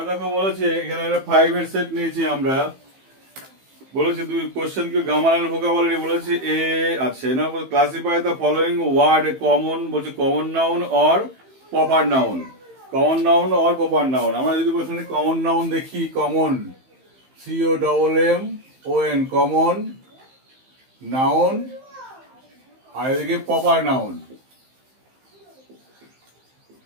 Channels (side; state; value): left; late; 15 ms